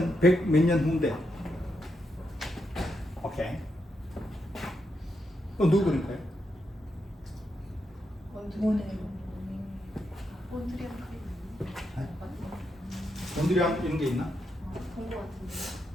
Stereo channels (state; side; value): normal; both; correlation 0.83